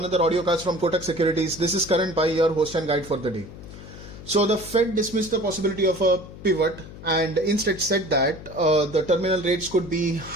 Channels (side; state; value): left; noise; hum, 15 dB below the sound